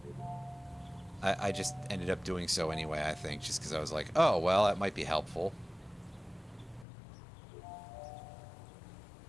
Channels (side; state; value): right; drops out; at 6.9 s